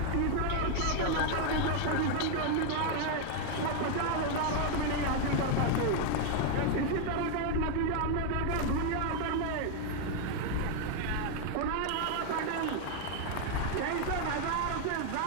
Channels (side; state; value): both; different; correlation 0.00